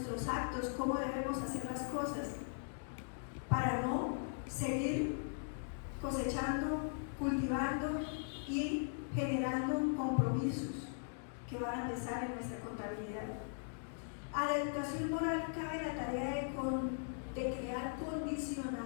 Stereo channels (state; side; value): silent; right; digital silence